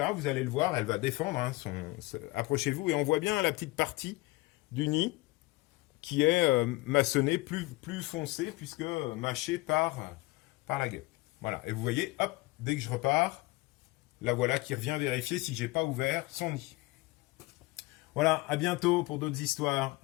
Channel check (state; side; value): quieter; right; 21.2 dB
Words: vous allez le voir, elle va défendre. Hein, approchez-vous et on voit bien la petite partie du nid qui est maçonné plus foncé puisque mâché par la guêpe. Voilà, et vous voyez, hop, dès que je repars, la voilà qui revient vérifier si j'ai pas ouvert son nid. Voilà, à bientôt pour d'autres histoires.